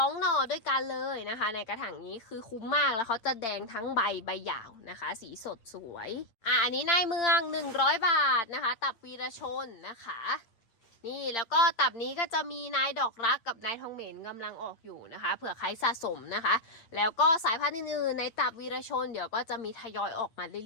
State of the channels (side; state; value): right; late; 8.8 ms